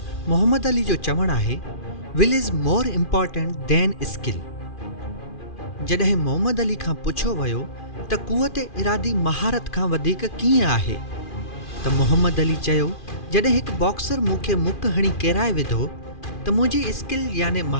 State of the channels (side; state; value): right; late; 2.4 ms